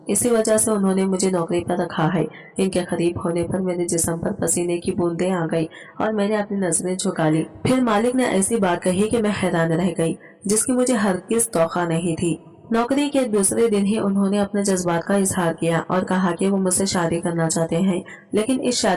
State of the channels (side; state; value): both; identical; correlation 1.00